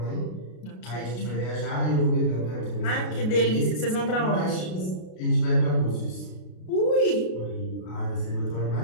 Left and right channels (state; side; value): late; right; 33 ms